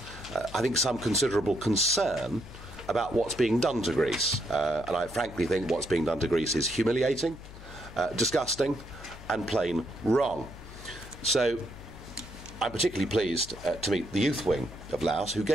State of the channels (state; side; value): noise; left; hum, 16 dB below the sound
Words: I think, some considerable concern about what's being done to Greece. And I frankly think what's being done to Greece is humiliating, disgusting, and plain wrong. So I'm particularly pleased to meet the youth wing of LAOS, who